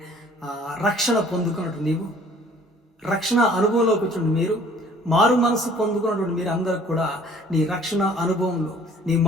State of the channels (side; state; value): both; normal; correlation 0.54